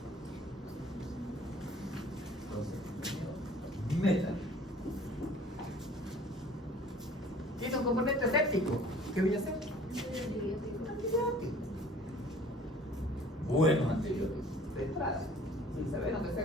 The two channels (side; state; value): both; normal; correlation 0.51